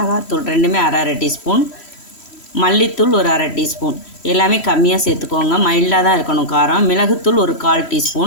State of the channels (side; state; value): right; late; 3.1 ms